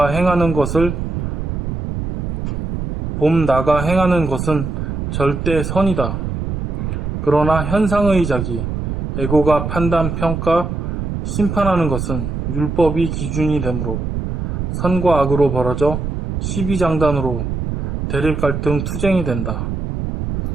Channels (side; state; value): right; noise; rumble, 3 dB below the sound